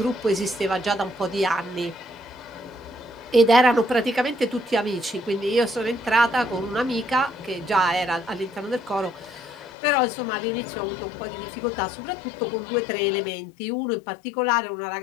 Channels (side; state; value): right; drops out; at 9.7 s